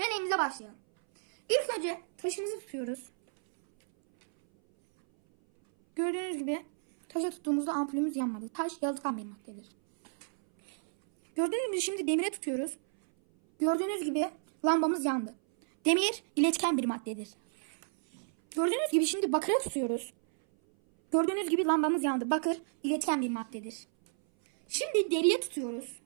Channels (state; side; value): silent; left; 57 dB below the other